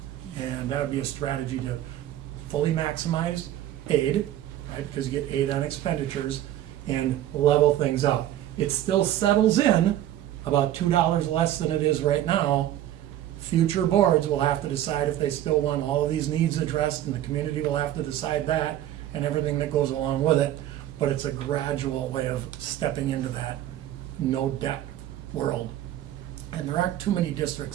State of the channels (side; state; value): left; quieter; 12.5 dB